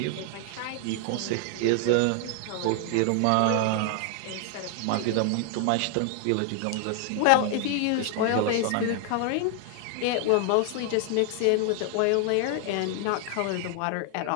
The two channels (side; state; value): both; different; correlation 0.00